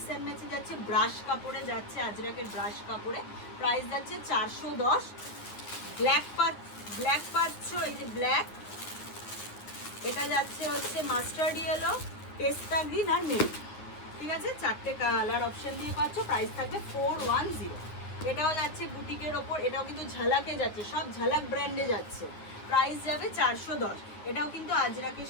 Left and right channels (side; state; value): right; late; 9.8 ms